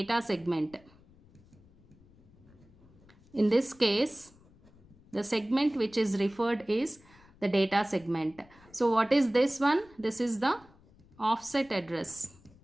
segment. In this case, the segment which is referred is the data segment. So what is this one? This is the offset address.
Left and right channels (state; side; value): noise; left; rumble, 27 dB below the sound